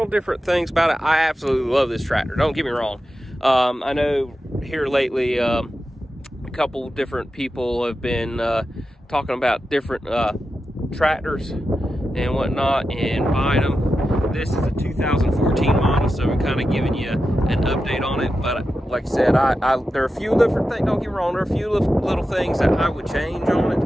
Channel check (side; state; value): both; normal; correlation 0.91